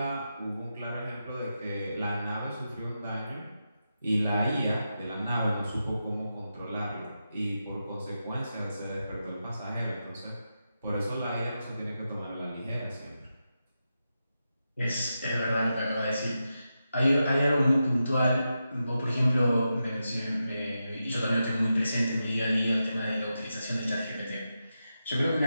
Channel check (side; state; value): both; inverted; correlation -0.89